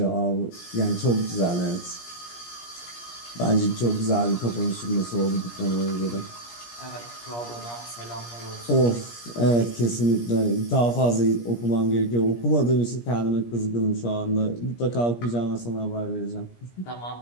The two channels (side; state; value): right; late; 17 ms